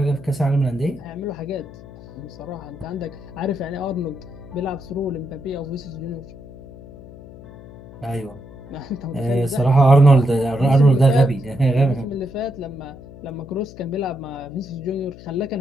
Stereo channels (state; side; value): noise; left; hum, 17 dB below the sound